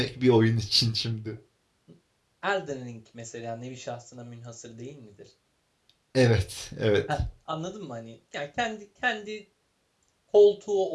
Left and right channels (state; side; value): identical; both; correlation 1.00